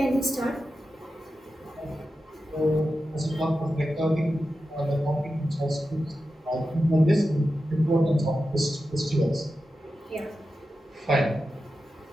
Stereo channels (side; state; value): both; normal; correlation 0.91